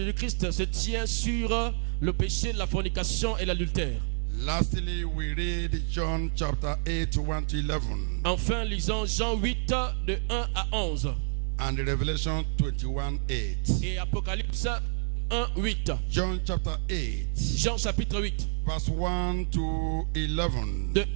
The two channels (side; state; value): left; silent; 59 dB below the other